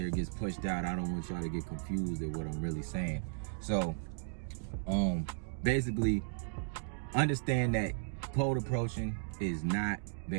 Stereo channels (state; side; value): silent; left; digital silence